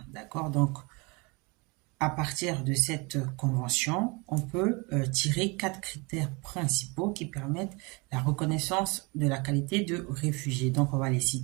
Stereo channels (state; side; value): quieter; left; 28.2 dB